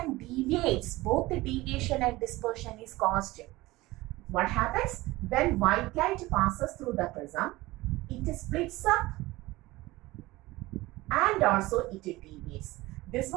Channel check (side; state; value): left; quieter; 19.5 dB